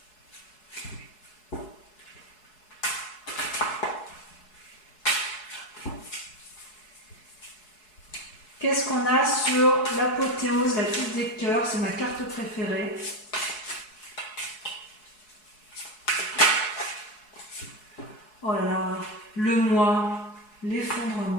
Qu'est-ce qu'on a sur l'apothéose, la 10 des cœurs? C'est ma carte préférée. Oh là là, le moi,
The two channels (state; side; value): late; right; 4.7 ms